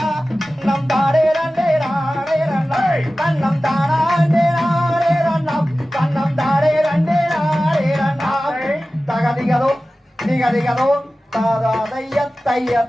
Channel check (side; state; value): both; normal; correlation 0.96